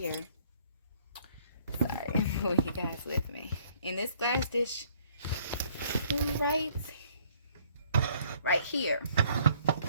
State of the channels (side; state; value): both; inverted; correlation -0.61